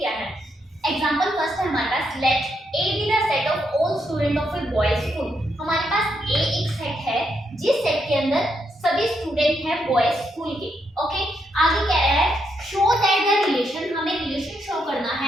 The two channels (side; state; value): both; normal; correlation 0.79